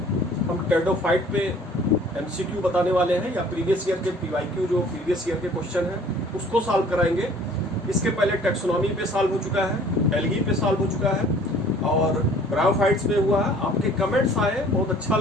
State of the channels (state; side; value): normal; both; correlation 0.52